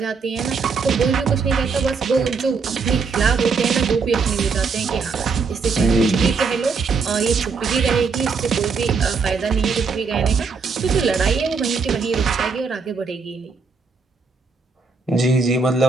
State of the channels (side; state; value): left; quieter; 4.9 dB